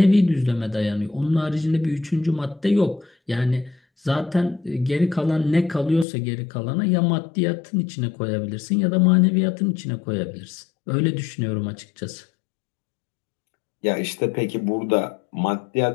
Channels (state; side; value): drops out; right; at 6.1 s